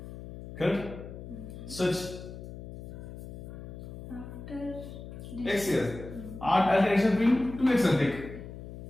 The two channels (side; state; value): left; noise; hum, 11 dB below the sound